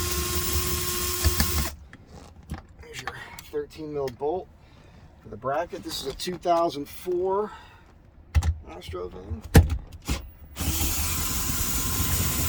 There's your 13 mil bolt for the bracket. This is a 2004 Astro van.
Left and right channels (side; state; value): both; identical; correlation 1.00